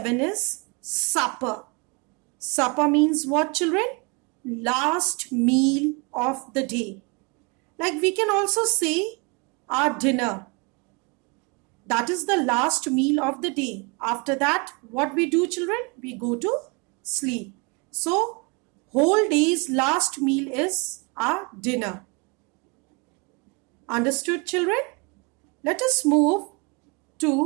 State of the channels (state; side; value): quieter; left; 30.2 dB